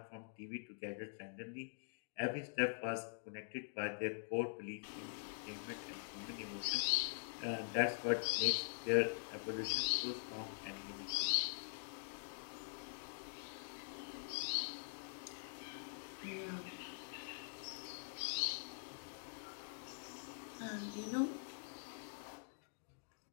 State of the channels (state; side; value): silent; right; digital silence